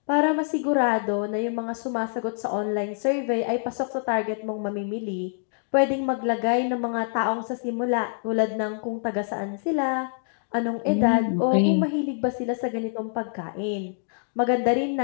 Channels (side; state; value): right; silent; digital silence